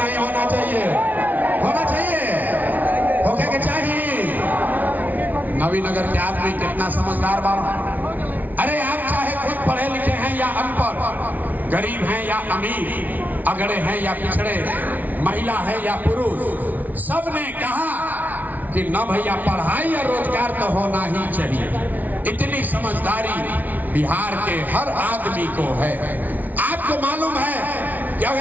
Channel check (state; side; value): late; left; 0.078 ms